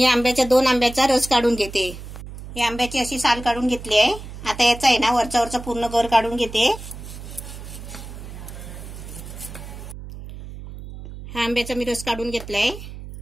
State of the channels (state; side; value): noise; right; hum, 12 dB below the sound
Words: 2 आंब्याचा रस काढून घेते. हे आंब्याची अशी साल काढून घेतली आहे. आता याचा आहे ना वरचा पूर्ण गर काढून घेते. हा आंब्याचा मी रस काढून घेतलाय.